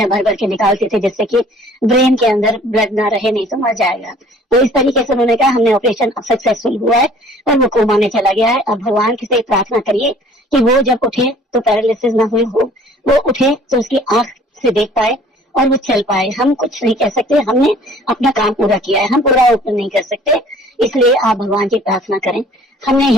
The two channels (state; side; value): normal; both; correlation 0.53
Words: भर भर के निकालते थे जिससे कि ब्रेन के अंदर ब्लड ना रहे, नहीं तो मर जाएगा। तो इस तरीके से उन्होंने कहा हमने ऑपरेशन सक्सेसफुल हुआ है और वो कोमा में चला गया है। अब भगवान से प्रार्थना करिए कि वो जब उठे तो पैरालिसिस ना हुई हो, वो उठे तो उसकी आंख से देख पाए और वो चल पाए। हम कुछ नहीं कह सकते, हमने अपना काम पूरा किया है, हम पूरा ओपन नहीं कर सकते, इसलिए आप भगवान की प्रार्थना करें। हमने